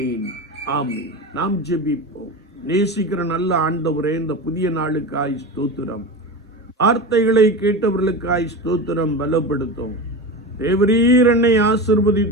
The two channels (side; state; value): both; normal; correlation 0.25